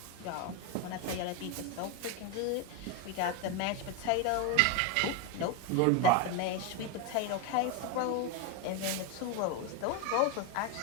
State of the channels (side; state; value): both; different; correlation 0.02